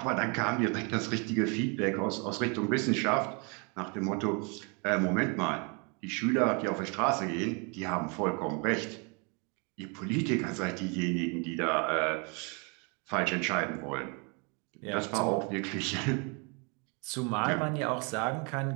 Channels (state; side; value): quieter; left; 33.1 dB